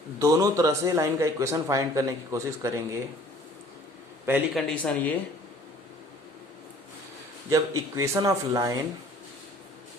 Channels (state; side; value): normal; both; correlation 0.52